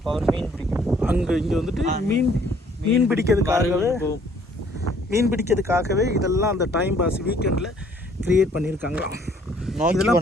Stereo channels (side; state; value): both; normal; correlation 0.61